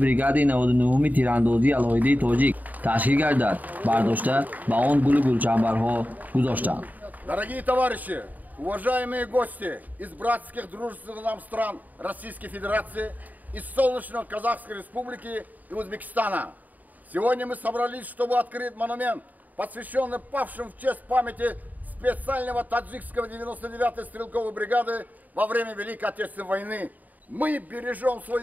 99 تیراندازی الهیده تاجیک تشکیل گردد برداشته به آن گلچنبرها گذاشتند. Дорогие товарищи, уважаемые гости из братских дружественных нам стран Российской Федерации, из солнечной Казахской Республики и Узбекистана. Сегодня мы собрались, чтобы открыть монумент, посвященный павшим в честь памяти специального таджикского 99-й стрелковой бригады во время Великой Отечественной войны. Мы бережем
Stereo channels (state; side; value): late; left; 0.080 ms